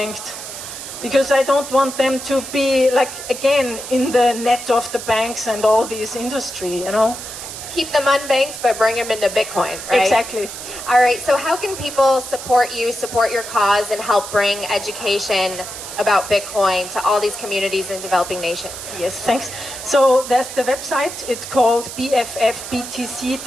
Because I don't want them to be, like, again, in the net of the banks and all this industry, you know. Keep them unbanked, but bring them into Bitcoin, right? Exactly. All right, so how can people support you, support your cause, and help bring education about Bitcoin to all these communities in developing nations? Yes, thanks. So there's the website, it's called bffbtc.org,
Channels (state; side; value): noise; right; hiss, 10 dB below the sound